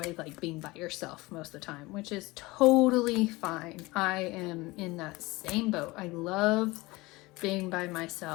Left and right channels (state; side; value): quieter; right; 21.8 dB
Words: like being by yourself most of the time, which is totally fine. I am in that same boat. I love being by